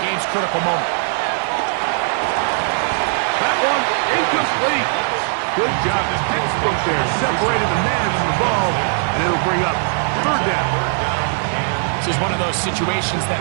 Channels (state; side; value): silent; left; digital silence